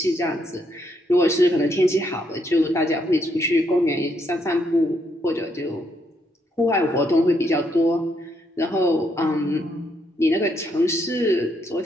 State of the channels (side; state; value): both; normal; correlation 0.75